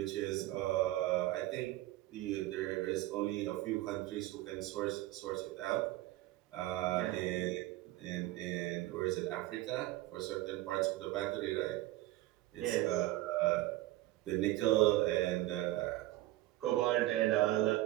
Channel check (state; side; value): quieter; left; 16.8 dB